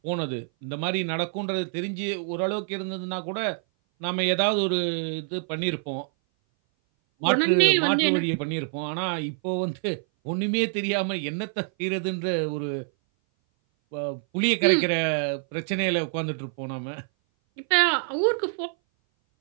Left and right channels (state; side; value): silent; left; 58 dB below the other